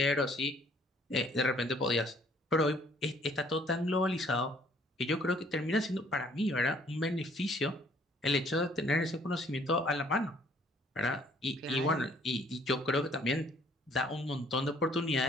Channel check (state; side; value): normal; both; correlation 0.61